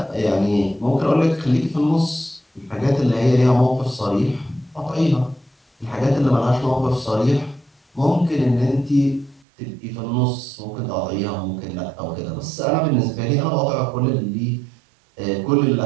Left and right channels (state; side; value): drops out; left; at 9.5 s